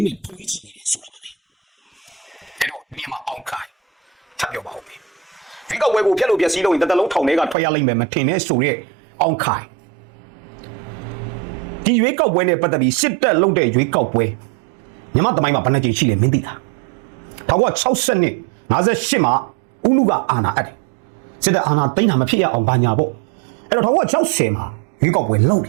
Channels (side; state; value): left; drops out; at 7.6 s